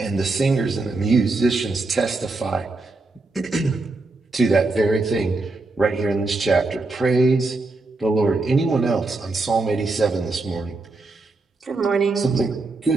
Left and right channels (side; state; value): left; quieter; 3.4 dB